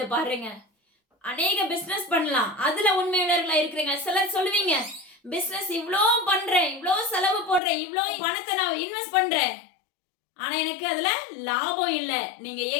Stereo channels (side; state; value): right; drops out; at 7.6 s